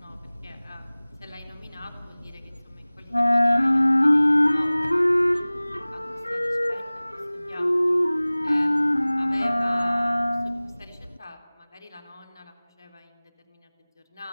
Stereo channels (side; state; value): both; inverted; correlation -0.99